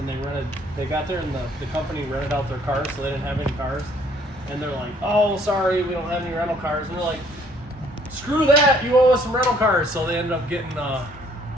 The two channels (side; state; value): both; normal; correlation 0.62